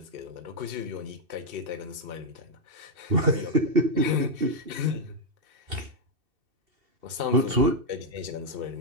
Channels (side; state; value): left; late; 2.7 ms